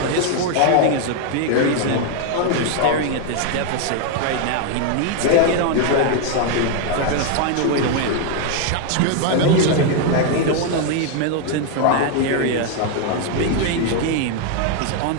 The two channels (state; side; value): different; both; correlation 0.01